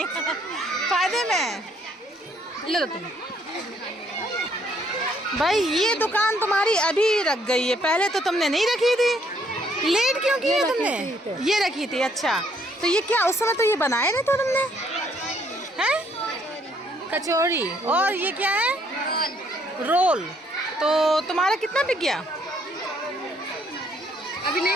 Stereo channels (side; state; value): both; normal; correlation 0.67